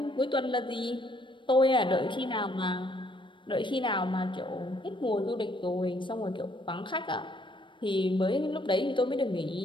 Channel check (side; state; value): right; late; 0.24 ms